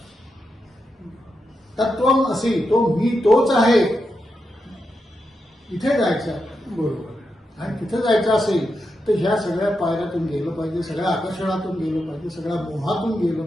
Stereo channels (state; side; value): normal; both; correlation 0.86